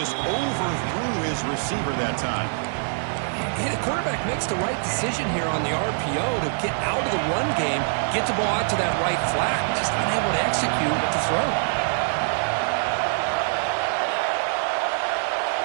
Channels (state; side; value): silent; left; 62 dB below the other